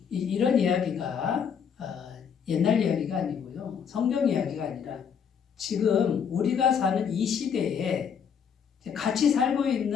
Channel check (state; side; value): quieter; right; 7.2 dB